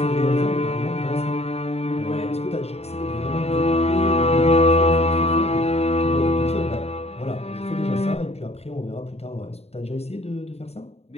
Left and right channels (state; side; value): late; right; 0.30 ms